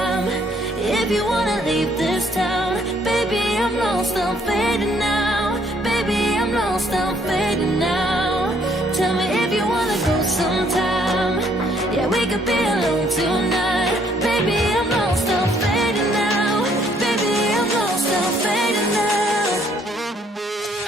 if you wanna leave this town, baby, I'm lost, I'm fading now. Baby, I'm lost, I'm fading now. Tell me if you wanna go sometime. Yeah, we could be alone tonight. Baby, I'm lost, I'm fading now. Baby, I'm lost, I'm fading now.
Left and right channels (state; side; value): normal; both; correlation 0.66